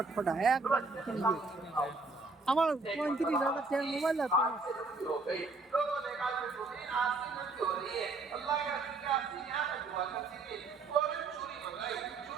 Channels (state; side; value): quieter; left; 3.7 dB